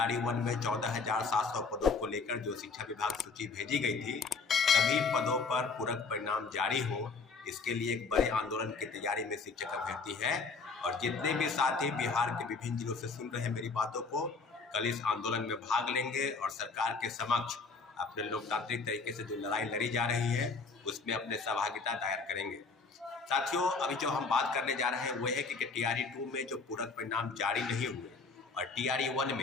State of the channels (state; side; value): quieter; right; 4.5 dB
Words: 1 में 14,700 पदों को लेकर जो शिक्षा विभाग सूची भेजी गई थी, सभी पदों पर पूरक परिणाम जारी हो, इसके लिए एक बड़े आंदोलन की तैयारी में शिक्षक अभ्यर्थी है। और जितने भी साथी बिहार के विभिन्न जिलों से सुन रहे हैं मेरी बातों को, कल इस आंदोलन में भाग लेंगे और सरकार के समक्ष अपने लोकतांत्रिक तरीके से जो लड़ाई लड़ी जा रही है उसमें अपने सहभागिता दायर करेंगे। साथियों, अभी जो हम बात करने जा रहे हैं वो है कि TRE 2 में जो पूरक परिणाम जारी नहीं हुए और TRE 1